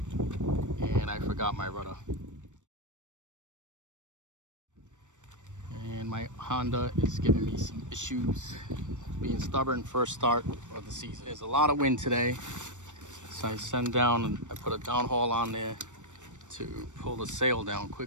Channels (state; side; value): late; left; 0.85 ms